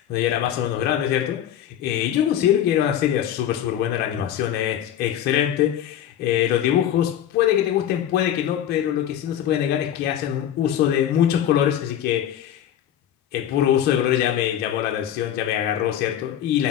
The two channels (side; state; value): right; quieter; 10.6 dB